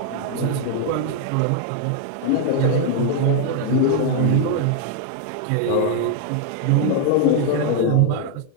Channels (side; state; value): both; different; correlation 0.00